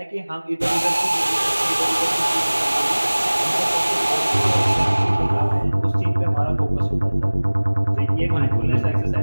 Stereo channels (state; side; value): inverted; both; correlation -1.00